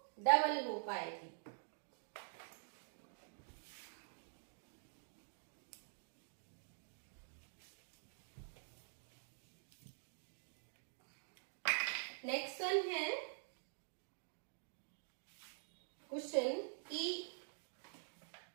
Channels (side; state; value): left; silent; digital silence